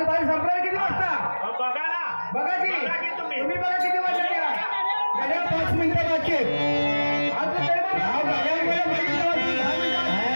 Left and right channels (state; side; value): inverted; both; correlation -1.00